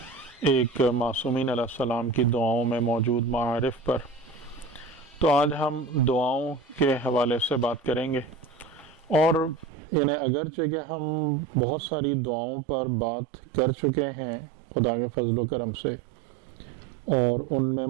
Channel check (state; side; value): drops out; left; at 9.7 s